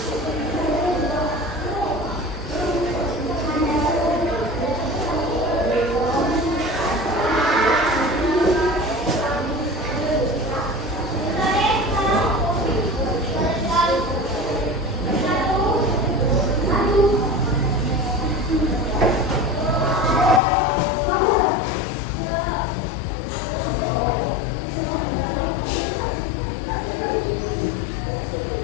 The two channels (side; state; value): right; drops out; at 20.4 s